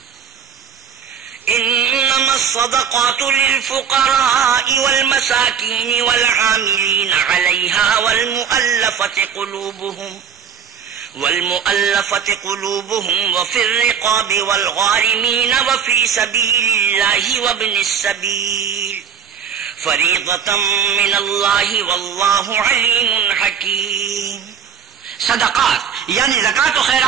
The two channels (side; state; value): left; quieter; 7.6 dB